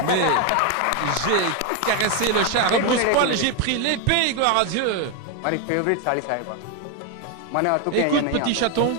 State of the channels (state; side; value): different; both; correlation 0.01